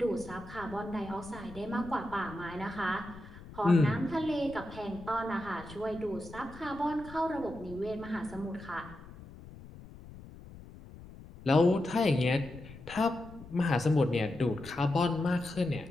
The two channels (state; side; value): noise; left; rumble, 17 dB below the sound